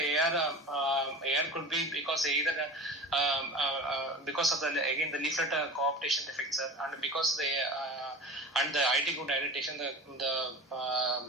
AR could be because either because of the leaflet cooptation defect, sir, and because and the IT good dilatation, the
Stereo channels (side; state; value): both; normal; correlation 0.35